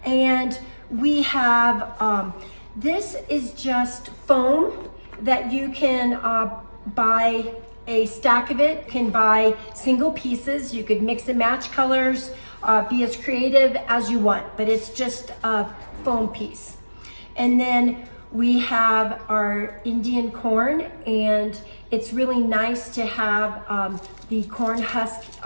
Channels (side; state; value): both; inverted; correlation -1.00